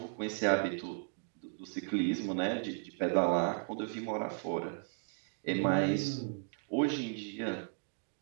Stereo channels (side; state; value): left; silent; 54 dB below the other